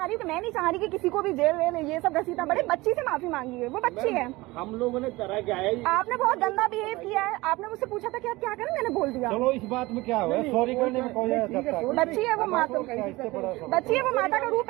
रही हूँ कि मैं नहीं चाह रही कि किसी को भी जेल वेल ये सब घसीटा पड़े। बच्ची से माफी मांगी है, वो बच्ची है। हम लोगों ने करा क्या है? आपने बहुत गंदा बिहेव किया है। आपने मुझसे पूछा था कि आप क्या करें, मैंने बोल दिया। चलो इस बात में क्या हुआ, सॉरी करने में कोई बच्ची है वो माता, बच्ची है वो माता का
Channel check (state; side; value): quieter; left; 20.9 dB